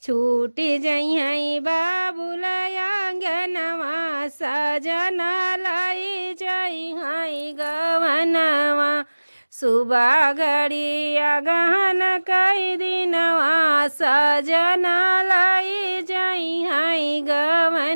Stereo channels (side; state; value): both; inverted; correlation -1.00